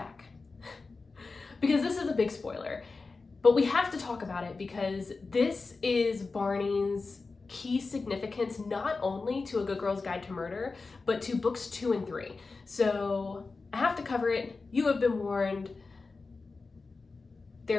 Because this is a big spoiler, but we have to talk about it because this is Barney's key significance, not only to A Good Girl's Guide to Murder, but to books 2 and 3. So I have to cover it. You have been warned.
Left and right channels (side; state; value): right; quieter; 4.0 dB